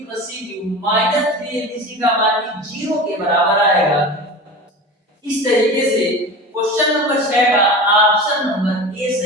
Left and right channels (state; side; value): normal; both; correlation 0.32